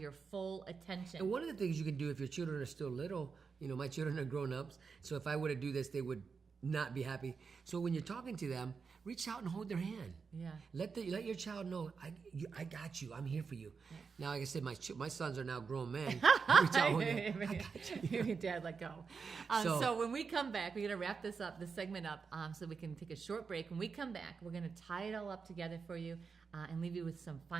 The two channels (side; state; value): left; quieter; 5.4 dB